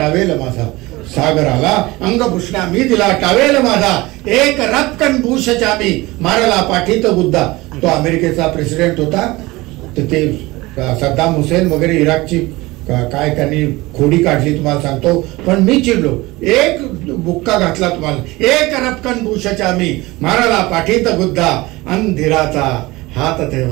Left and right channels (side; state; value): left; quieter; 21.0 dB